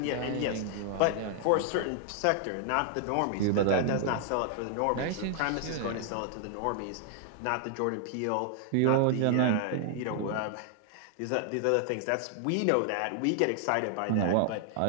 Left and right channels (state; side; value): different; both; correlation 0.00